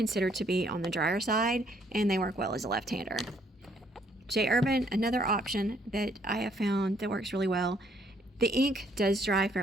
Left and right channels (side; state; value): both; normal; correlation 0.67